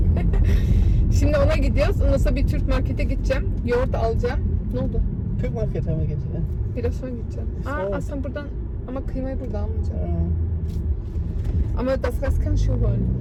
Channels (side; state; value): both; identical; correlation 1.00